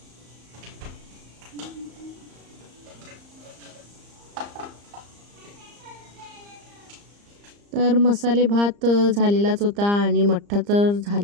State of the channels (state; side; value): late; left; 34 ms